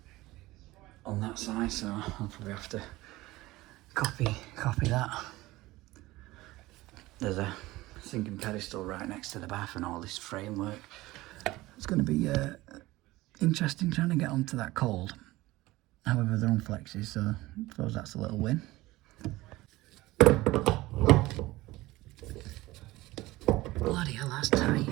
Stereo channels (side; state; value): left; quieter; 18.8 dB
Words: on that side, so I'll probably have to copy that. There's a sinking pedestal right next to the bath and all this framework. It's going to be interesting trying to get onto that cold. However, they're on flexes, so I suppose that's a little win. Bloody hell, that's tight.